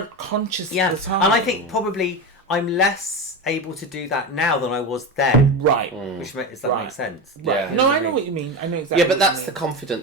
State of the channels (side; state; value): both; normal; correlation 0.20